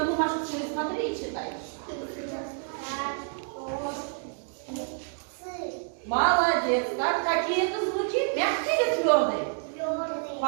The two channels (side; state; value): left; silent; 56 dB below the other